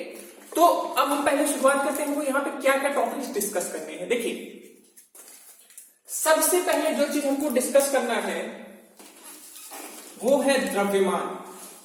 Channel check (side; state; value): both; identical; correlation 1.00